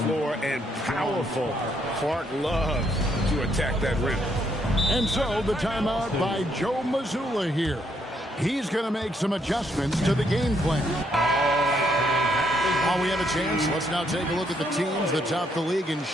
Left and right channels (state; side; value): normal; both; correlation 0.73